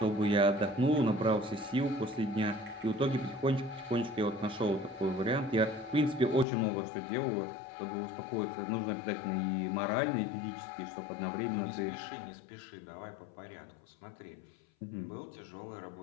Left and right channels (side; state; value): right; drops out; at 6.5 s